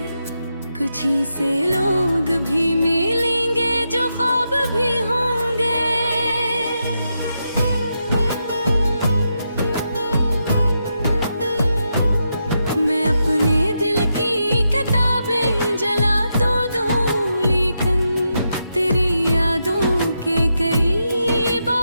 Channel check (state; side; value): inverted; both; correlation -0.84